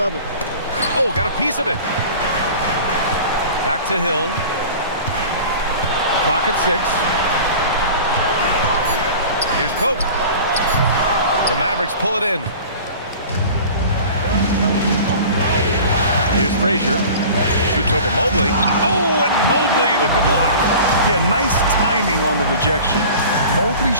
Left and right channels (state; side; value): inverted; both; correlation -0.40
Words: Oh, got a piece of it. Back to Hill. Clock at 6. Here's Pope. The Mavericks pull it in. Here's Frazier. Shoots over Mobley. Oh, and Mobley with the block. Yeah, nice timing on the rejection. Mobley